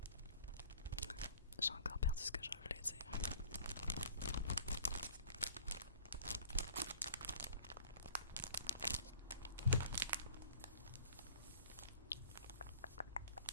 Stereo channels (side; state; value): both; inverted; correlation -0.49